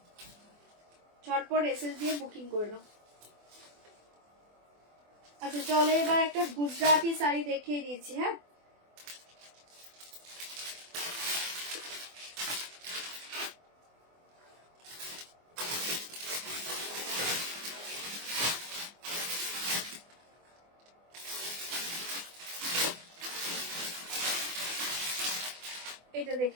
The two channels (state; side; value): late; left; 24 ms